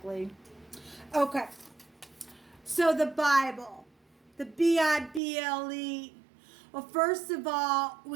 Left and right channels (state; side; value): drops out; left; at 5.2 s